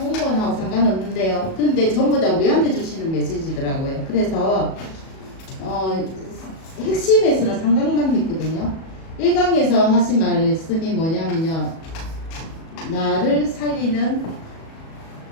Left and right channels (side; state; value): right; late; 37 ms